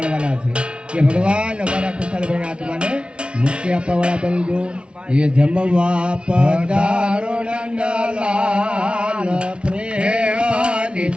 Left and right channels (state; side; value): late; left; 0.058 ms